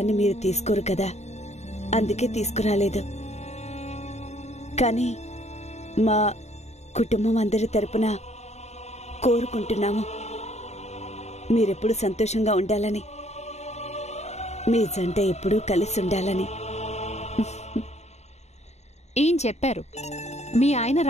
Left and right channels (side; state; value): right; late; 0.32 ms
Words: మీరు తీసుకోరు కదా, అందుకే తీసుకురాలేదు. కానీ మా కుటుంబం అందరి తరపున కోరుకుంటున్నాము మీరెప్పుడు సంతోషంగా ఉండాలని, మీ జంట ఎప్పుడూ కలిసి ఉండాలని. ఏం చెప్పారు? మీ ఆయన